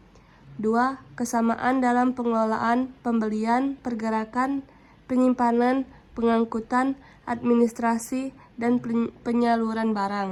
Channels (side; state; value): both; identical; correlation 1.00